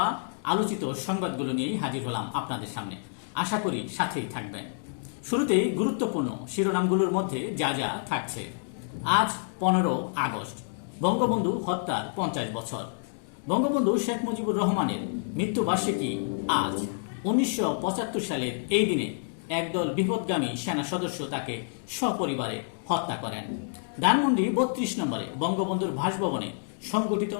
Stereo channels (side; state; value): right; silent; digital silence